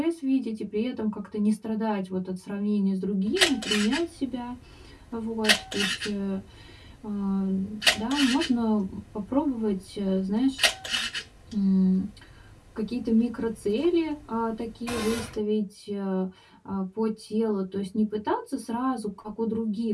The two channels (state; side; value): identical; both; correlation 1.00